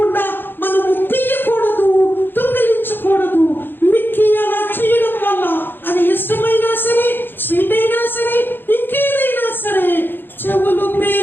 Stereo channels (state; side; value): late; right; 0.098 ms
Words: మనము తీయకూడదు, దొంగిలించకూడదు. మిక్కి అలా చేయడం వల్ల అది ఇష్టమైనా సరే, స్వీట్ అయినా సరే, ఇంకేదైనా సరే చెవులు